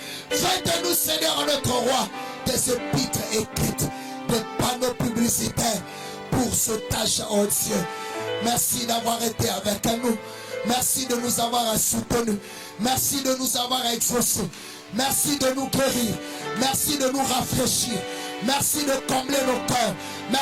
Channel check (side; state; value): both; identical; correlation 1.00